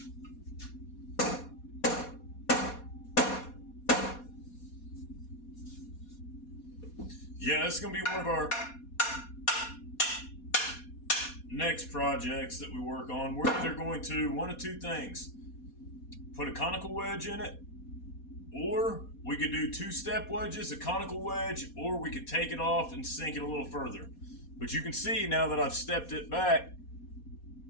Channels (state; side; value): late; right; 4.2 ms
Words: yeah, this is going to be one of our next projects that we work on. We're either going to, one of two things, put a conical wedge in it, or we could do 2-step wedges, a conical wedge, or we could take it off and sink it a little further. But you can see now that I've stepped it back